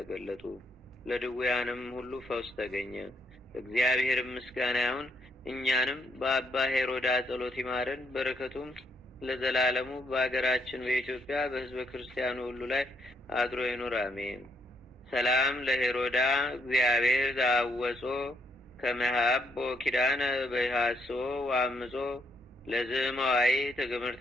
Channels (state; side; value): normal; both; correlation 0.73